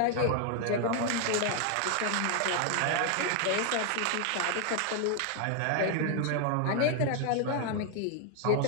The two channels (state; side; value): different; both; correlation 0.01